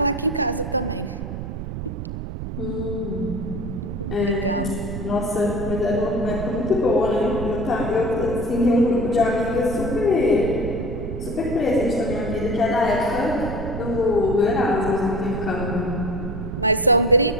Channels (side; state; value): right; noise; rumble, 6 dB below the sound